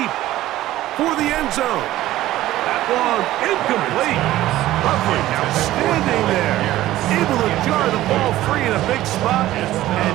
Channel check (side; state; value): left; quieter; 15.0 dB